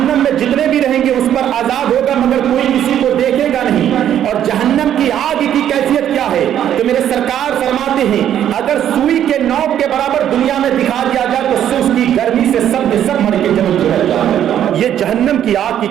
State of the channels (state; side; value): quieter; left; 10.4 dB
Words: میں جتنے بھی رہیں گے اس پر عذاب ہوگا، مگر کوئی کسی کو دیکھے گا نہیں۔ اور جہنم کی آگ کی کیفیت کیا ہے؟ تو میرے سرکار فرماتے ہیں اگر سوئی کے نوک کے برابر دنیا میں دکھا دیا جائے تو اس کی گرمی سے سب کے سب مر کے جمع ہو جائے۔ یہ جہنم کی آگ کی